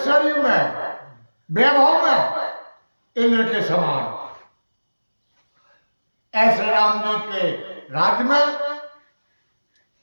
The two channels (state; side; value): inverted; both; correlation -1.00